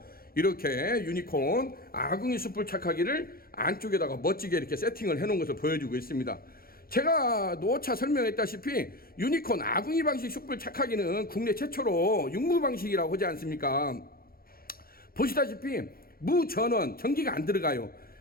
이렇게 유니콘 아궁이 숯불 착하기를 안쪽에다가 멋지게 이렇게 세팅을 해놓은 것을 보여주고 있습니다. 제가 노차 설명했다시피 유니콘 아궁이 방식 숯불 착하기는 국내 최초로 육무 방식이라고 하지 않습니까? 보시다시피 무전원 전기가 안 들어가요.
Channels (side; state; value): right; late; 0.43 ms